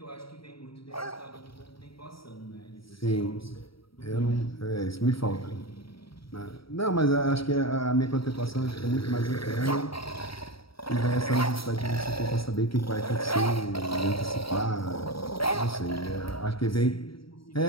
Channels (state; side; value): late; right; 0.75 ms